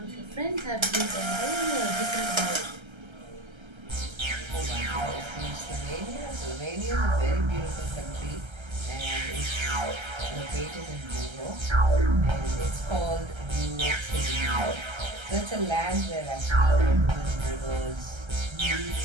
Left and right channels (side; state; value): left; late; 1.3 ms